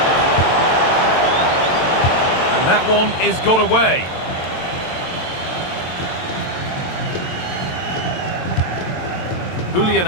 And that one is got away. Julian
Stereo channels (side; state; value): right; late; 22 ms